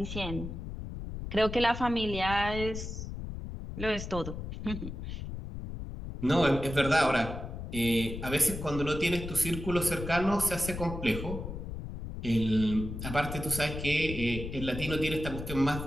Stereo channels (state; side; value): noise; left; rumble, 7 dB below the sound